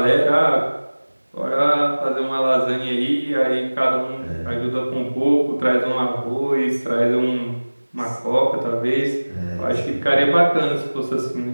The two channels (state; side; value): inverted; both; correlation -1.00